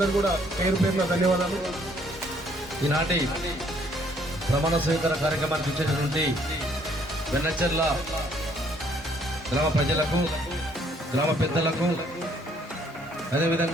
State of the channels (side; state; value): both; normal; correlation 0.65